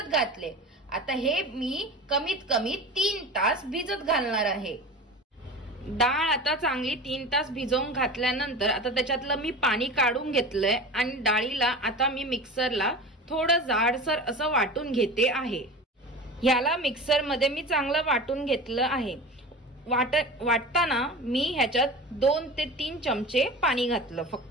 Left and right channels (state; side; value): normal; both; correlation 0.32